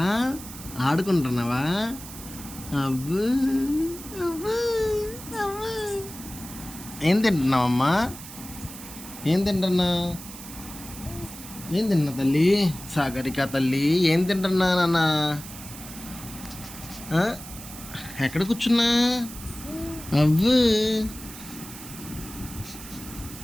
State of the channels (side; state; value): right; noise; hiss, 14 dB below the sound